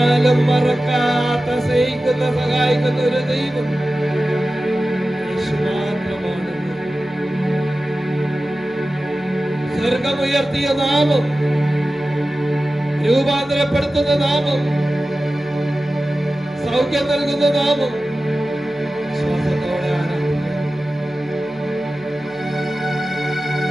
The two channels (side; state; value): left; noise; hum, 27 dB below the sound